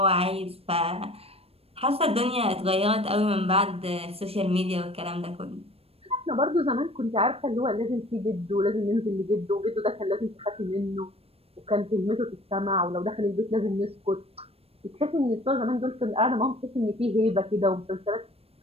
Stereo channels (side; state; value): left; late; 0.28 ms